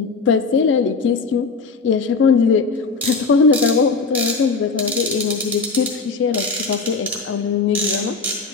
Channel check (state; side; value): quieter; right; 4.5 dB